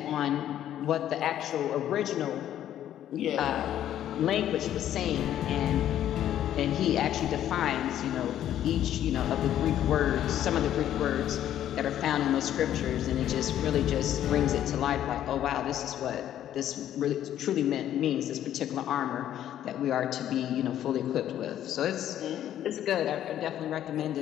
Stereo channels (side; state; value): right; quieter; 11.3 dB